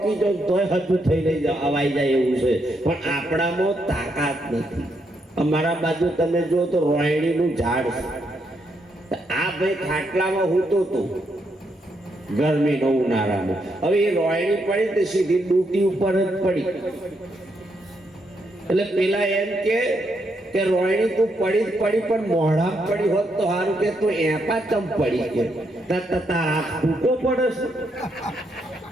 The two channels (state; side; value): normal; both; correlation 0.78